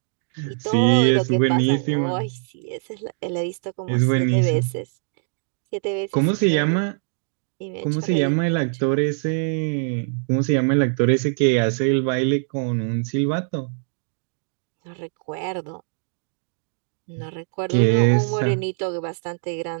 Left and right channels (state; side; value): silent; left; digital silence